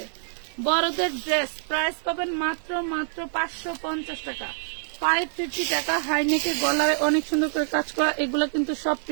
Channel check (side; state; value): left; silent; 61 dB below the other